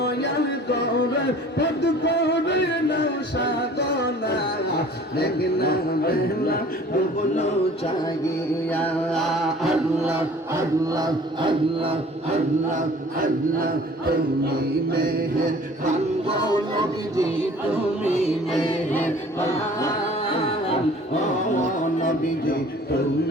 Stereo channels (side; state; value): both; normal; correlation 0.49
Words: করে, পদ করে না সাধনা। দেখনা বেলা ডুবল চাগিয়া। আল্লাহ আল্লাহ আল্লাহ আল্লাহ আল্লাহ। তুমি মেহের বাঙ্গো নবীজি, তুমি মেহের বান ও নবীজি,